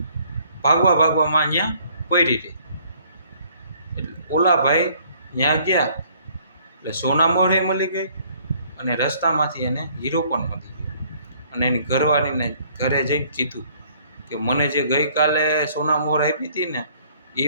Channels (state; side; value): inverted; both; correlation -0.60